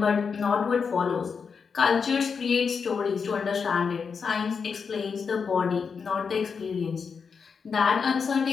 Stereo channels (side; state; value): right; quieter; 5.8 dB